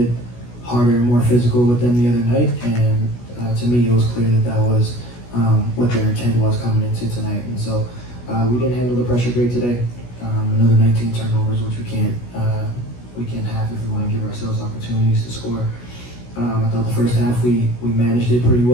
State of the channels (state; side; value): late; right; 16 ms